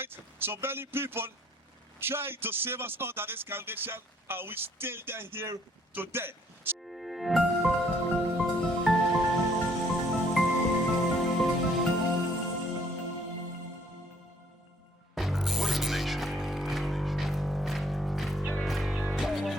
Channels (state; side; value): normal; both; correlation 0.63